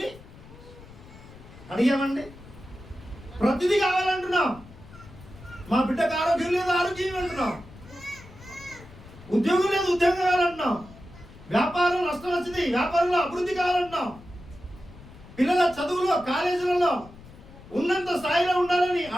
అడిగామండి? ప్రతిదీ కావాలంటున్నాం. మా బిడ్డకు ఆరోగ్యం లేదు, ఆరోగ్యం అంటున్నాం. ఉద్యోగం లేదు, ఉద్యోగం కావాలంటున్నాం. వ్యాపారం నష్టం వచ్చింది, వ్యాపారంలో అభివృద్ధి కావాలంటున్నాం. పిల్లల చదువులో, కాలేజీలలో ఉన్నంత స్థాయిలో ఉండాలని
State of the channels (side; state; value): left; noise; rumble, 20 dB below the sound